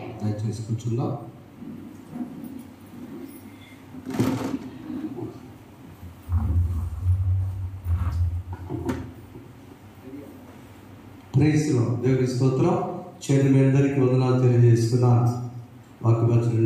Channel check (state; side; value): identical; both; correlation 1.00